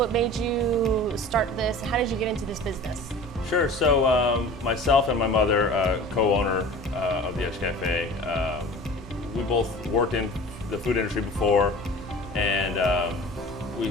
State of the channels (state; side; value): normal; both; correlation 0.41